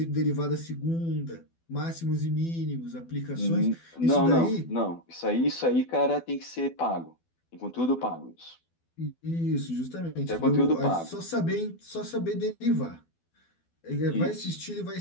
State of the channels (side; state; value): right; late; 12 ms